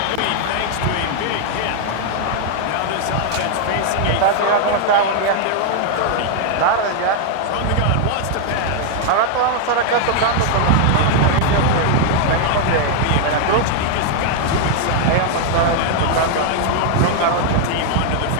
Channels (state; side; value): different; both; correlation 0.00